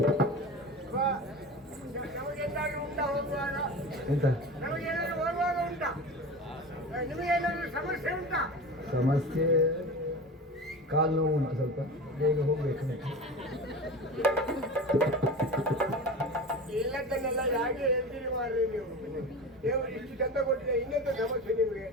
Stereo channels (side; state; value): both; normal; correlation 0.31